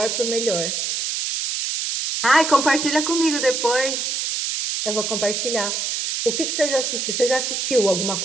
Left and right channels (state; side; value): noise; right; hiss, 1 dB below the sound